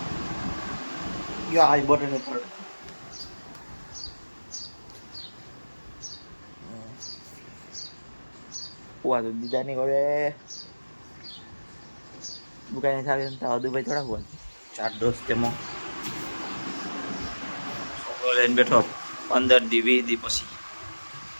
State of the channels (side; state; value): both; inverted; correlation -1.00